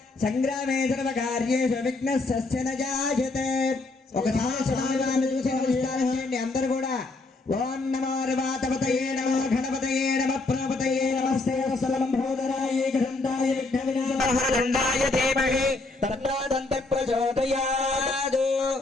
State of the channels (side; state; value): right; quieter; 3.3 dB